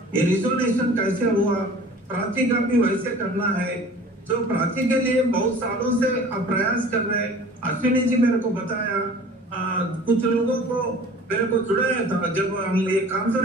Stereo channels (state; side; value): normal; both; correlation 0.45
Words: ये रिजोल्यूशन कैसे हुआ, प्राची का भी वैसे करना है। जो प्राची के लिए बहुत सालों से आप प्रयास कर रहे हैं। अश्विनी जी मेरे को बताया, कुछ लोगों को मेरे को जुड़ाया था जब हम ये